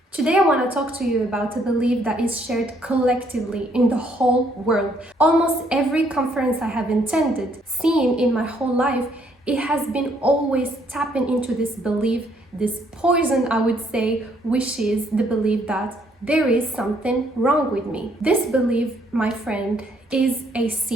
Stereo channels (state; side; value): normal; both; correlation 0.68